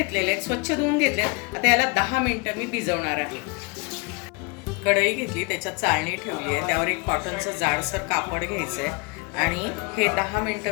आहेत, स्वच्छ धुवून घेतलेत. आता याला 10 मिनिटं मी भिजवणार आहे. कढई घेतली, त्याच्यात चाळणी ठेवली आहे, त्यावर एक कॉटनचं जाडसर कापड घ्यायचं आहे आणि हे 10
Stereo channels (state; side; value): quieter; right; 29.5 dB